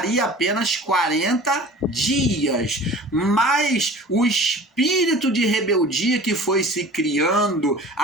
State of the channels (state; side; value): normal; both; correlation 0.42